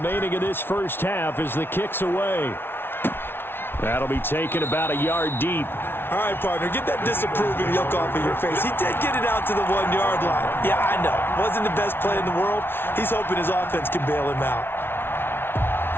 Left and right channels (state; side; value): late; right; 0.11 ms